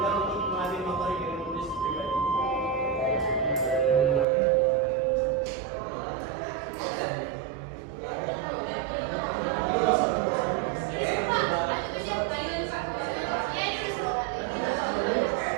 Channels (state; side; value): drops out; left; at 4.2 s